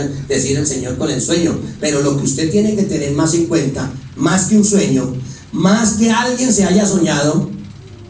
decir el Señor con el sueño. Pero lo que usted tiene que tener más en cuenta, más que un sueño, más que alguien se haya soñado,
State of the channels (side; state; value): both; identical; correlation 1.00